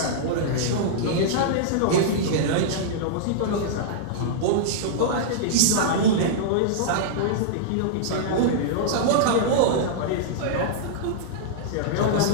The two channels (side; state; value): both; different; correlation -0.02